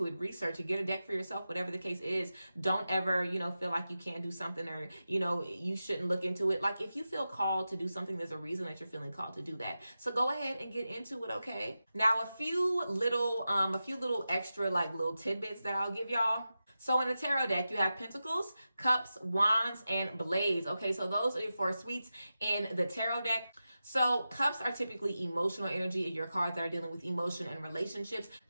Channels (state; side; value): inverted; both; correlation -0.92